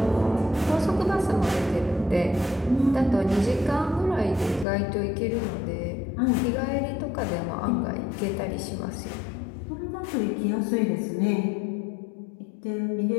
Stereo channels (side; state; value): right; drops out; at 4.7 s